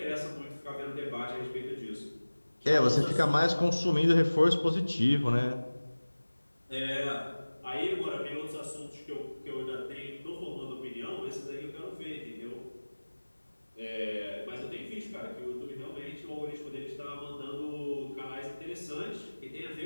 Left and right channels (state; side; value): inverted; both; correlation -1.00